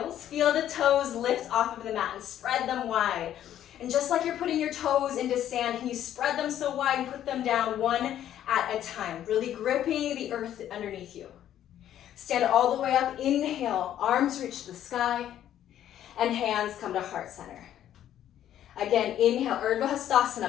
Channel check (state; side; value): quieter; right; 11.3 dB